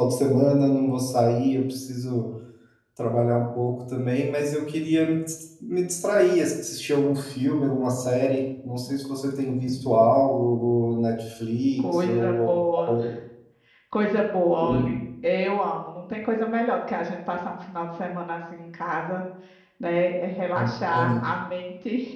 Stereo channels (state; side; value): identical; both; correlation 1.00